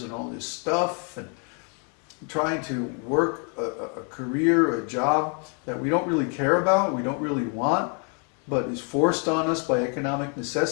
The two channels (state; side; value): quieter; right; 39.2 dB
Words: and all this stuff and trying to work a career, a job that we don't really care about, we don't really want, but is forced on us by economic